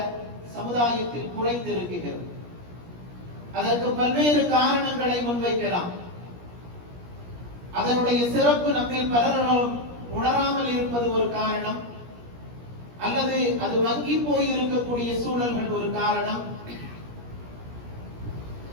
சமுதாயத்தில் குறைந்திருக்கிறது. அதற்கு பல்வேறு காரணங்களை முன்வைக்கலாம். அதனுடைய சிறப்பு நம்மில் பலரும் உணராமல் இருப்பது ஒரு காரணம், அல்லது அது வங்கி போய் இருக்கக்கூடிய சூழல்கள் ஒரு காரணம்.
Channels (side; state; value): left; late; 17 ms